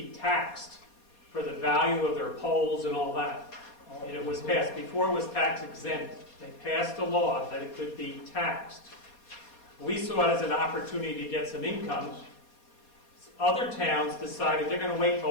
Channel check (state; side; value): late; right; 4.2 ms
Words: taxed for the value of their poles and all that. And it was passed, before it was tax exempt. They passed a law that it could be taxed. We saw it as an opportunity to get some income. Other towns decided they're going to wait till